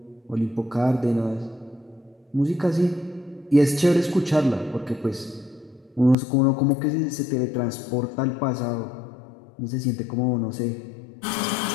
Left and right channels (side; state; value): right; drops out; at 6.2 s